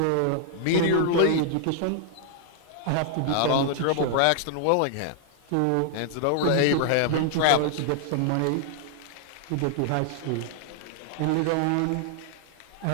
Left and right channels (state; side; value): different; both; correlation 0.00